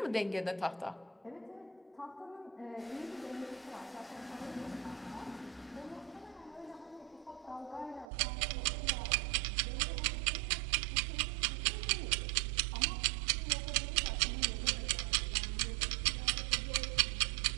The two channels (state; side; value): drops out; left; at 8.1 s